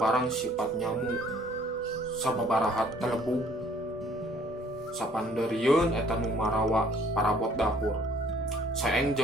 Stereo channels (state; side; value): normal; both; correlation 0.59